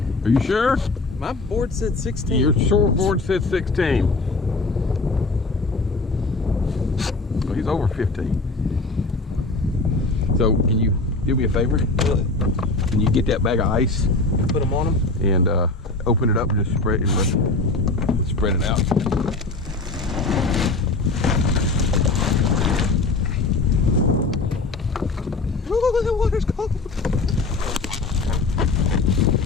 Are you sure? My board said 16. Your short board said 16. Well, he's over 15. So can you do me a favor? Really? Can you get that bag of ice? Put them on him? And open it up and just spread it out. Oh, the water's cold.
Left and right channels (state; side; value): quieter; right; 3.5 dB